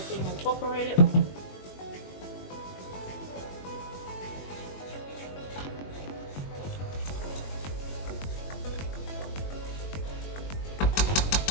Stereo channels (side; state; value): right; late; 21 ms